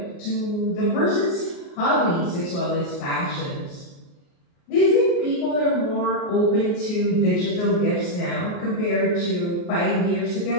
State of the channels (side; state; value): right; late; 29 ms